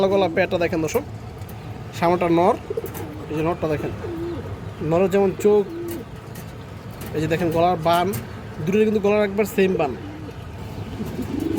গলা পেয়ারটা দেখেন দর্শক, সামনেটা নর। এই যে নরটা দেখেন, নরের যেমন চোখ, এই যে দেখেন গলার বান, দুটোর কিন্তু গলার একবার সেম বান।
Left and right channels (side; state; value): both; identical; correlation 1.00